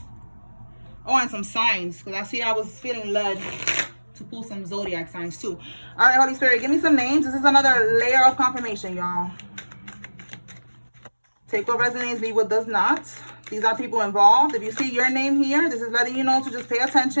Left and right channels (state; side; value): inverted; both; correlation -1.00